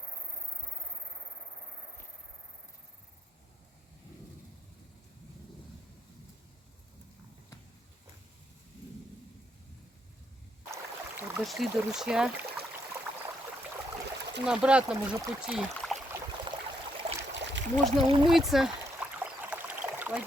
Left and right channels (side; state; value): both; normal; correlation 0.75